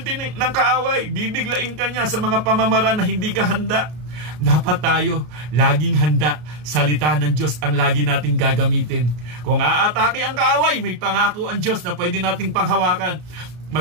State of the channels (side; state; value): left; late; 33 ms